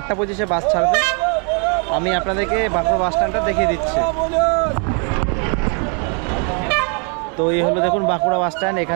25-এ বাস ছাড়বে। আমি আপনাদেরকে বাঁকুড়া বাস স্ট্যান্ডটা দেখিয়ে দিচ্ছি। তো এই হলো দেখুন বাঁকুড়া বাস স্ট্যান্ড,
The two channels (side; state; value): left; quieter; 38.8 dB